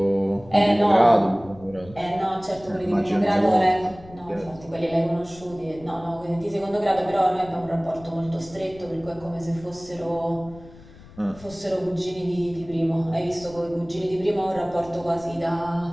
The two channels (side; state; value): left; noise; rumble, 20 dB below the sound